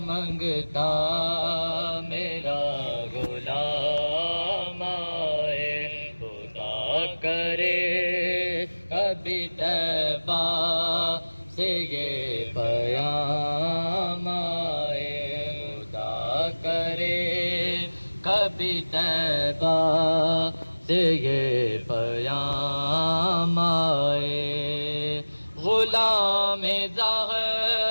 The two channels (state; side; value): inverted; both; correlation -1.00